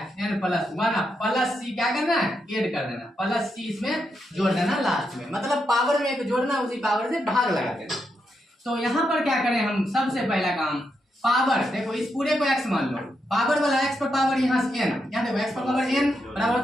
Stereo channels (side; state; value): both; normal; correlation 0.83